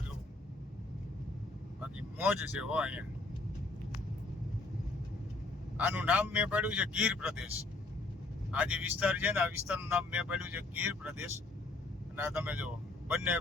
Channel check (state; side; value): quieter; right; 3.1 dB